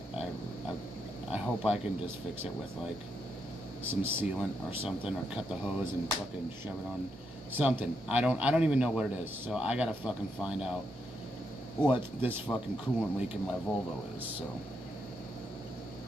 I hope I can just fix it with like some sealant or something, or cut the hose and fucking shove it on something. I don't even know what it is, so I gotta fucking find out what this fucking coolant leak in my Volvo is. So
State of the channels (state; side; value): normal; both; correlation 0.80